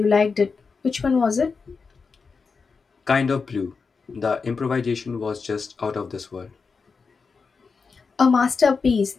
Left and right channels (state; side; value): quieter; right; 4.9 dB